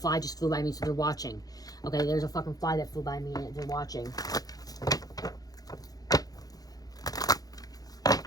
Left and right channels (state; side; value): late; right; 0.18 ms